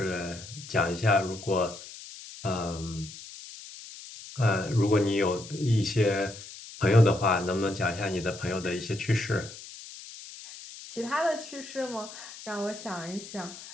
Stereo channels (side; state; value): left; noise; hiss, 14 dB below the sound